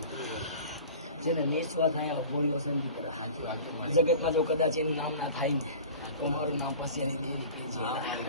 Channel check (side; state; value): both; inverted; correlation -0.40